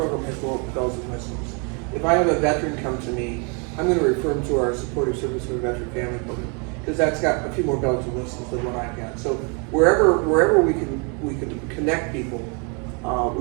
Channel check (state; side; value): quieter; left; 35.0 dB